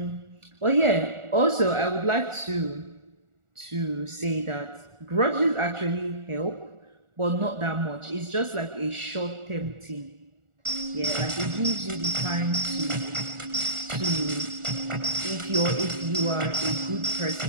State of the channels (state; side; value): late; left; 1.4 ms